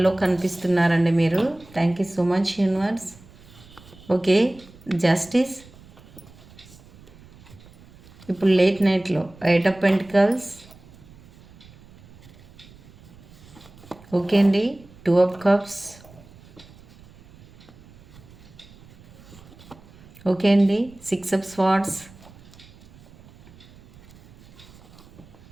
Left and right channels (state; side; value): noise; right; rumble, 23 dB below the sound